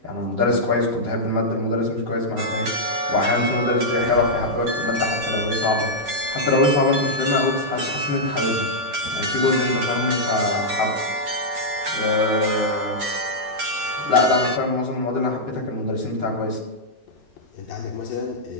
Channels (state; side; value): late; left; 8.7 ms